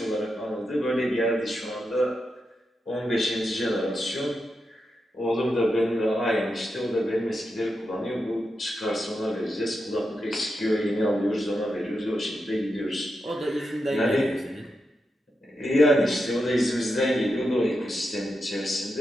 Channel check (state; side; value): normal; both; correlation 0.87